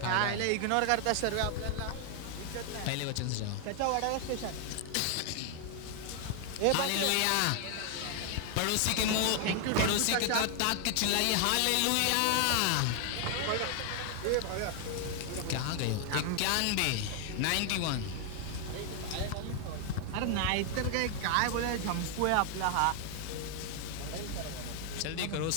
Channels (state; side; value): different; both; correlation 0.00